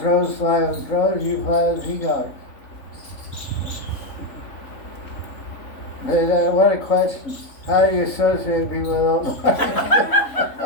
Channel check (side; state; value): right; late; 3.5 ms